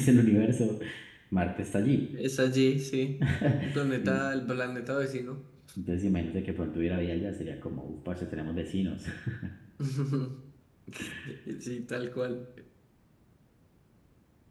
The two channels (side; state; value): both; identical; correlation 1.00